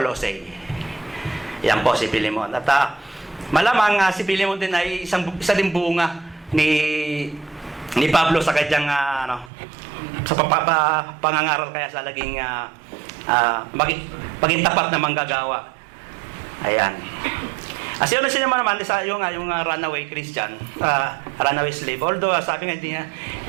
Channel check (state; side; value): drops out; left; at 9.5 s